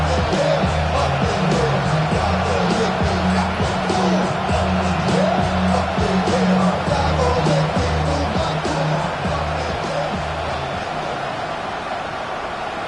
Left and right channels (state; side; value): identical; both; correlation 1.00